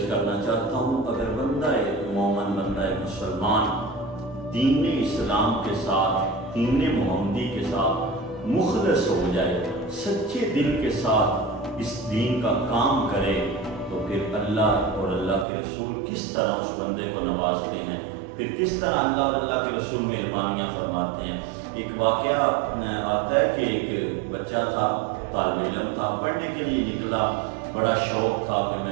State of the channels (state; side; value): drops out; left; at 15.5 s